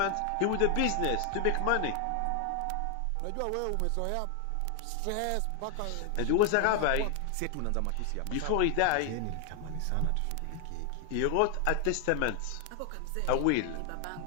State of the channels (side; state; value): both; different; correlation 0.00